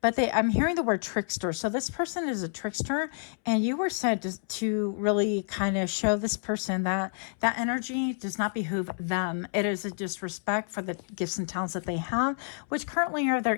I'm hearing the word trickster. So this person is a trickster and you were said to really kind of show this person that energy does not behoove them. It is a disrespect for the gifts and talents that they have, which currently are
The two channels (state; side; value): silent; right; 59 dB below the other